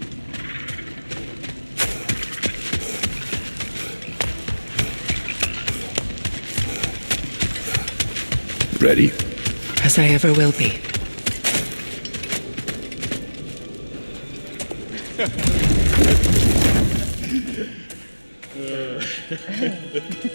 Ready? As I ever will be.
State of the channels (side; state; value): both; inverted; correlation -1.00